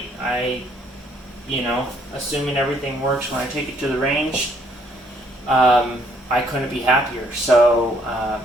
You know, assuming everything works when I take it to the range, I couldn't be happier. So,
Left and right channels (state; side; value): normal; both; correlation 0.66